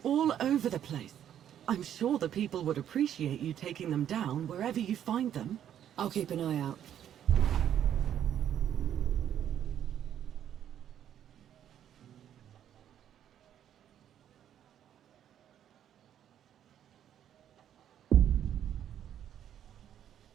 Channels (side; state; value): left; quieter; 10.2 dB